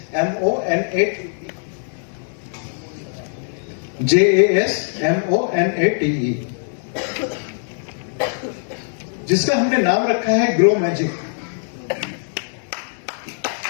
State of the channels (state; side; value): silent; right; 64 dB below the other